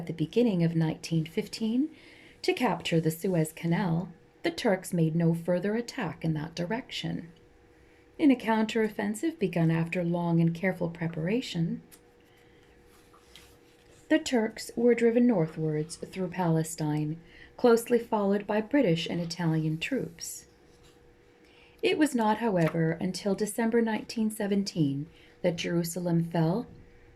the beginning of 1915 to capture the Suez Canal, the Turks made no further attack in that direction. In a counteroffensive begun after long and careful preparation, the Turks were driven northwards through Palestine, closely followed by British and Italian troops. It was not, however, until December 1917 that Jerusalem fell,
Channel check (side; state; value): both; identical; correlation 1.00